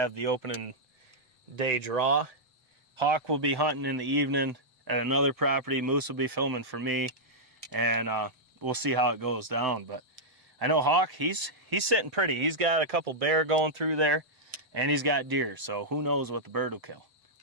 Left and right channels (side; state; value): left; late; 7.8 ms